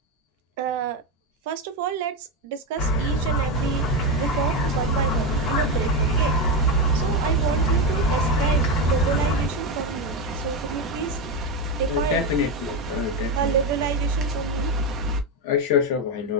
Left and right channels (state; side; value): normal; both; correlation 0.11